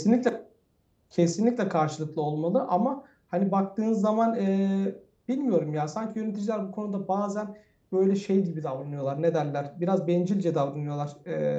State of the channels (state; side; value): identical; both; correlation 1.00